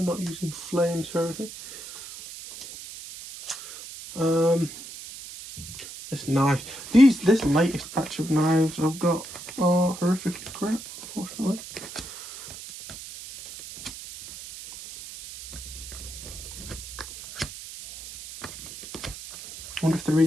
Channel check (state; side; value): noise; right; hiss, 13 dB below the sound